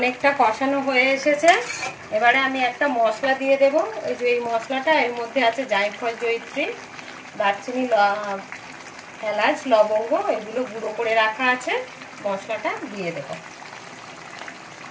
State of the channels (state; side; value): identical; both; correlation 1.00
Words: কষানো হয়ে এসেছে, এবারে আমি একটা মশলা দিয়ে দেব। এই যে এই মশলাটা, এর মধ্যে আছে জায়ফল, জয়িত্রী, দারচিনি, এলাচ, লবঙ্গ, এগুলো গুঁড়ো করে রাখা আছে। মশলাটা দিয়ে দেব।